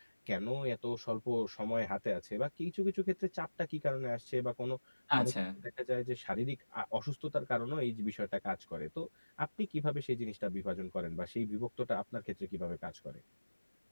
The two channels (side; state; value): both; inverted; correlation -1.00